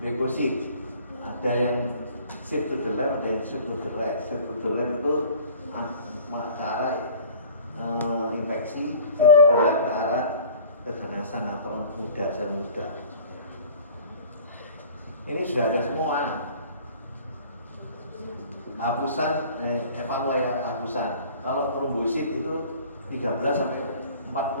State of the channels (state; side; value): inverted; both; correlation -0.46